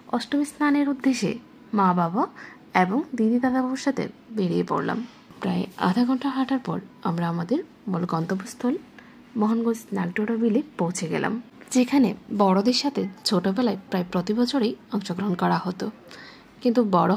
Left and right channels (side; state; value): both; identical; correlation 1.00